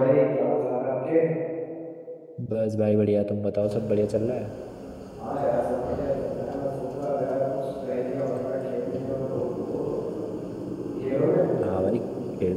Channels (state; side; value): identical; both; correlation 1.00